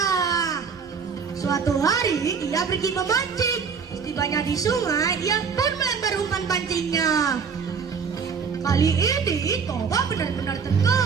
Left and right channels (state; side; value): quieter; left; 6.0 dB